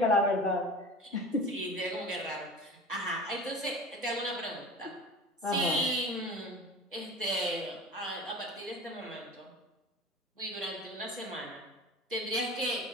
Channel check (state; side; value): normal; both; correlation 0.35